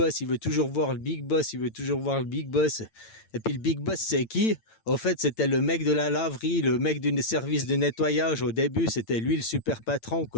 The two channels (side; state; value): right; late; 8.9 ms